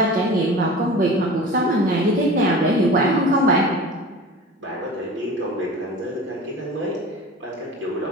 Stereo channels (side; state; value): both; normal; correlation 0.37